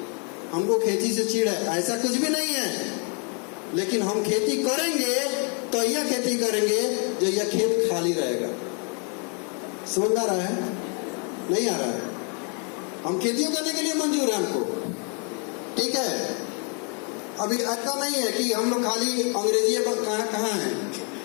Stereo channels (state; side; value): quieter; right; 38.4 dB